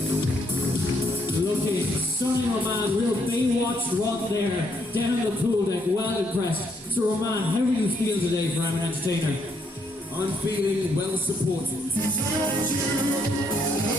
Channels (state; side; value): normal; both; correlation 0.73